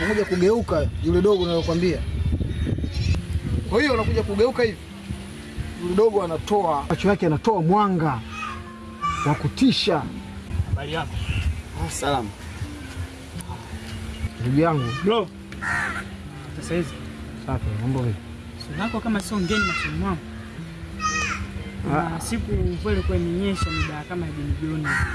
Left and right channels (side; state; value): both; identical; correlation 1.00